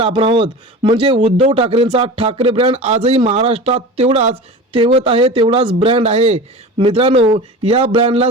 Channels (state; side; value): normal; both; correlation 0.33